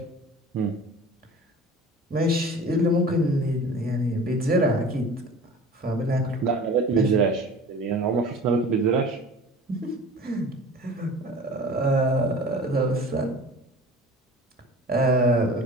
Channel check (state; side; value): normal; both; correlation 0.41